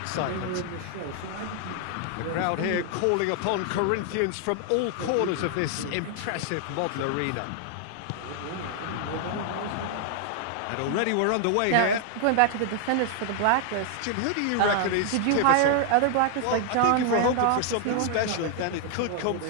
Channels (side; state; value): both; different; correlation 0.00